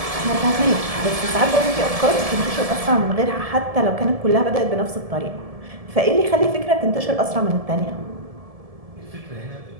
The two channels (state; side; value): late; left; 1.7 ms